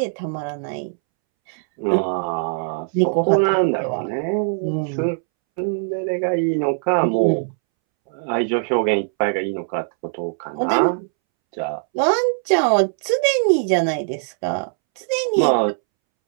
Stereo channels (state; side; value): silent; left; 65 dB below the other